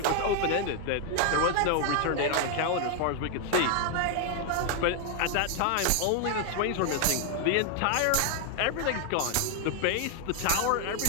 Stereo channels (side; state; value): both; different; correlation 0.00